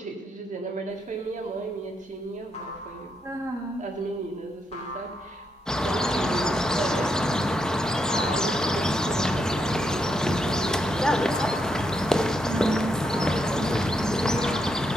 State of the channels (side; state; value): both; normal; correlation 0.80